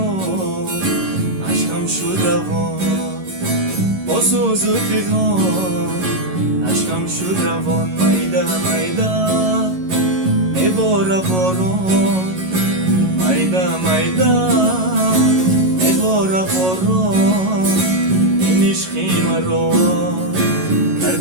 عشقم شد روان با سوز و پیغام عشقم شد روان مایده مایده میباره باران مایده مایده میباره باران این عشقی مرا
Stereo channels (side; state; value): left; late; 11 ms